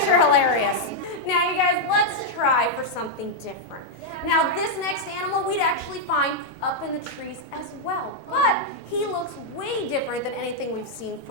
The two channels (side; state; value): right; late; 1.1 ms